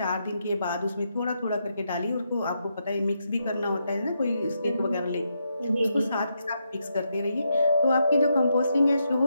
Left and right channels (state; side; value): inverted; both; correlation -0.81